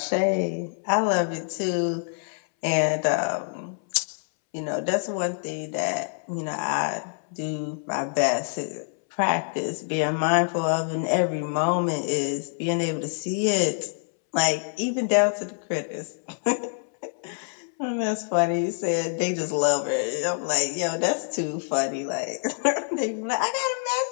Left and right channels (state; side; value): silent; right; 61 dB below the other